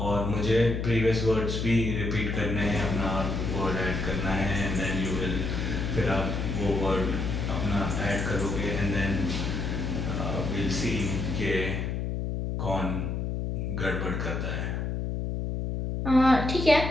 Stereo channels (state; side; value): noise; left; hum, 2 dB below the sound